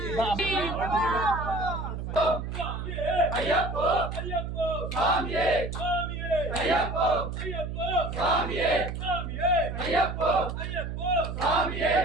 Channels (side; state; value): right; noise; hum, 5 dB below the sound